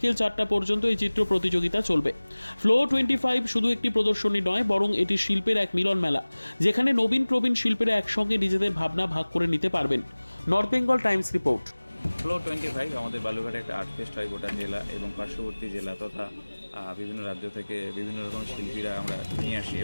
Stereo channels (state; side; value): inverted; both; correlation -1.00